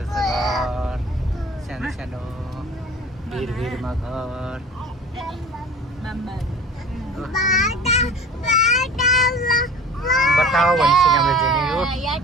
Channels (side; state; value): both; normal; correlation 0.41